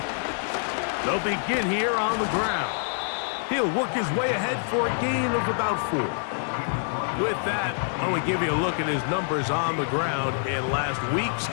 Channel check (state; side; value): silent; right; 61 dB below the other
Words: They'll begin here on the ground. He'll work his way ahead for a gain of about 4. With that, I want to give you a look at his numbers on the ground in last week's